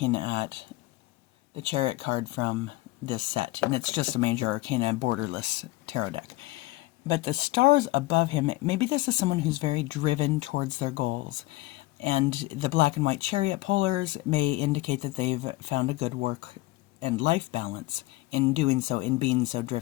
at the Chariot card from this set, and it's just a Major Arcana borderless tarot deck. But the stars above him, maybe this is someone who's very driven towards their goals. And the black and white Chariot polars may indicate that they've found a good work and life balance in doing so, in being so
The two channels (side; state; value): right; quieter; 19.5 dB